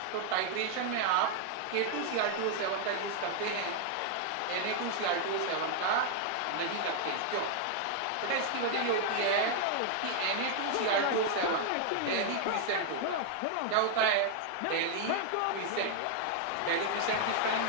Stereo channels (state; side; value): different; both; correlation 0.00